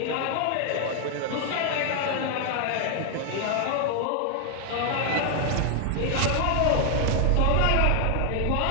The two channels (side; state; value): both; different; correlation 0.00